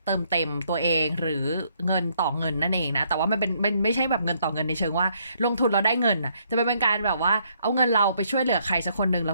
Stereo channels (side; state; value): both; inverted; correlation -0.70